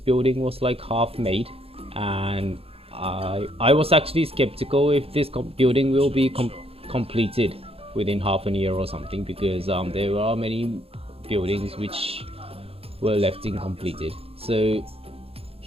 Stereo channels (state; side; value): late; left; 0.28 ms